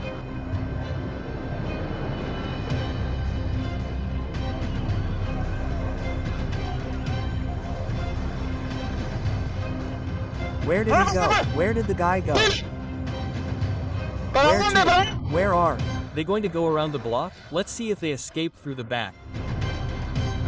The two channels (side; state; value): both; identical; correlation 1.00